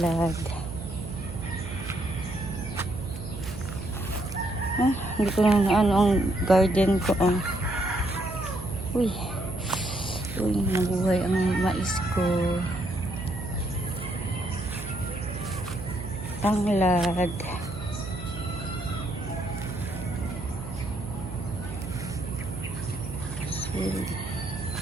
Hindi ko na ano ang garden ko. Uy, nabuhay ang mais ko. Tanglad.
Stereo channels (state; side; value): noise; right; hum, 10 dB below the sound